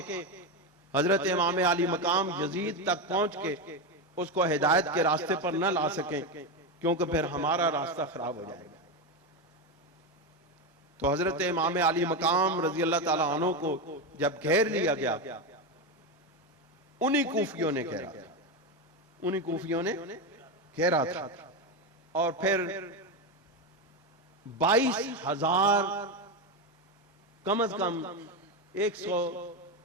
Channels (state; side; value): normal; both; correlation 0.13